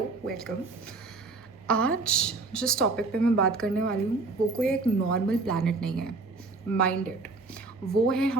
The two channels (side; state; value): left; quieter; 3.7 dB